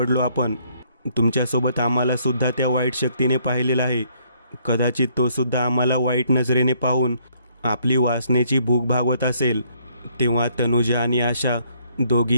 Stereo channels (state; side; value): inverted; both; correlation -0.67